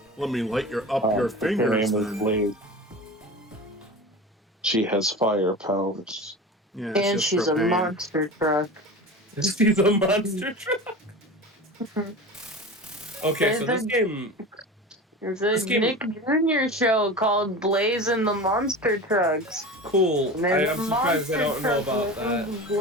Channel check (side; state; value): both; normal; correlation 0.31